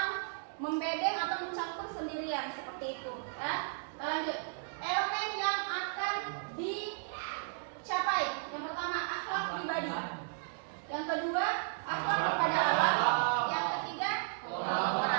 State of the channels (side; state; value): left; silent; digital silence